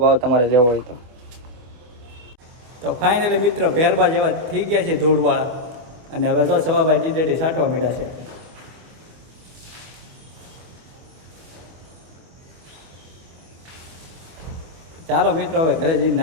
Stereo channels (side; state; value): left; late; 25 ms